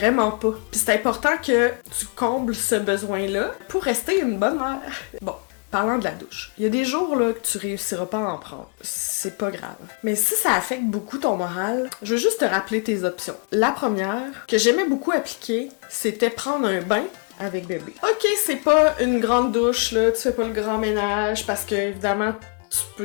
pas. Pis c'est important que tu combles ce besoin-là pour rester une bonne mère. Bon. Parlant de la douche, il y a des jours là que tu réussiras pas à en prendre. C'est pas grave. Mais si ça affecte beaucoup ton moral, je veux juste te rappeler tes options. La première, que j'aimais beaucoup appliquer, c'était prendre un bain avec bébé. Ok, c'est pas une grande douche, là, tu fais pas le grand ménage parce que, évidemment, tu peux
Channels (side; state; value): right; quieter; 35.2 dB